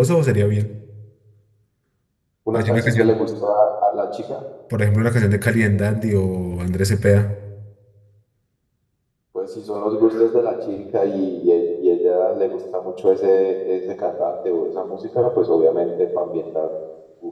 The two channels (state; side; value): identical; both; correlation 1.00